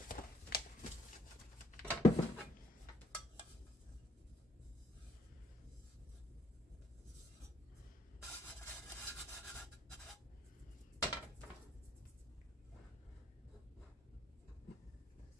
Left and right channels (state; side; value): normal; both; correlation 0.67